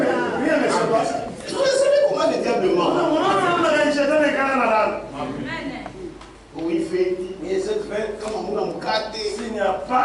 Rien ne se passe. Tu voulais savoir comment le diable ment. Oui, fait. Et cette fête, Comment on a mukate. s'il n'y a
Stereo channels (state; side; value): identical; both; correlation 1.00